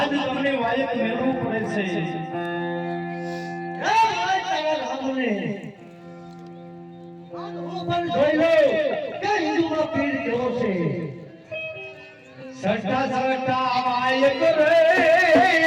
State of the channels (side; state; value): both; identical; correlation 1.00